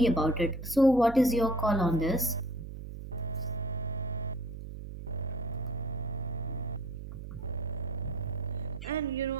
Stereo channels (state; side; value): noise; right; hum, 10 dB below the sound